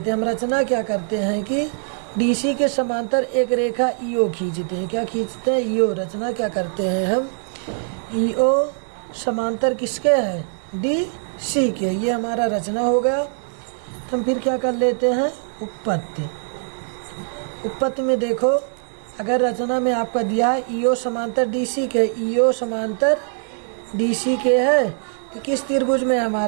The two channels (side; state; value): left; silent; 64 dB below the other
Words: हैं। हम रचना क्या करते हैं कि DC के समांतर एक रेखा EO खींचते हैं। क्या खींचते हैं EO। रचना क्या करते हैं हम EO समांतर किसके है DC के। ये हमारा रचना हो गया। हम फिर क्या कर लेते हैं उत्पत्ति। उत्पत्ति में देखो अगर रचना में आपका दिया है EO समांतर DC के, EO समांतर DC के है, तो किस त्रिभुज में